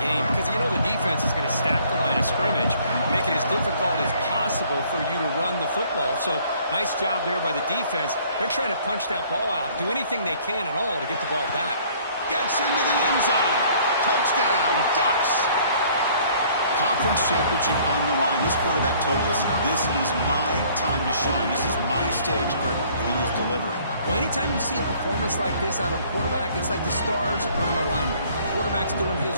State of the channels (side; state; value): both; inverted; correlation -0.58